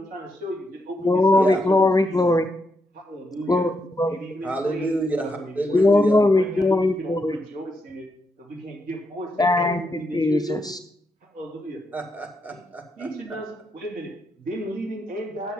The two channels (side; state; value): both; normal; correlation 0.81